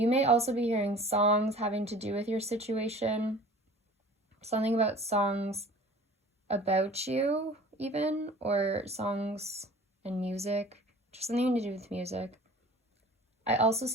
may also be hearing songs having to do with your situation. Something about songs about you, even, or songs and music. Just something to do with music. I also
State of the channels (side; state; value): both; normal; correlation 0.44